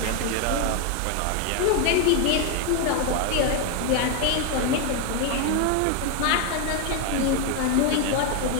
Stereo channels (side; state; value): both; different; correlation 0.01